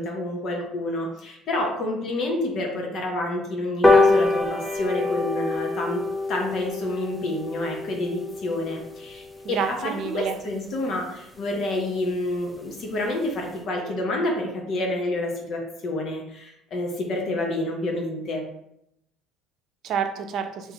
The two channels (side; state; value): both; normal; correlation 0.67